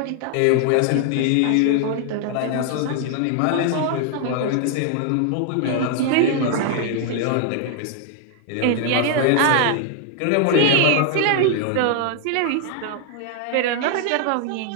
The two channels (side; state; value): both; different; correlation 0.00